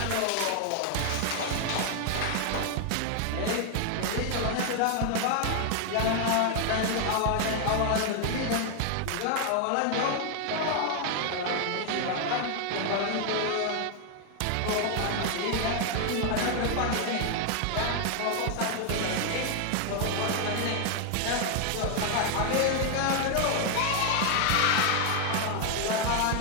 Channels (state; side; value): different; both; correlation 0.00